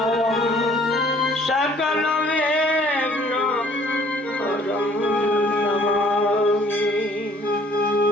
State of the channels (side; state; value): both; normal; correlation 0.57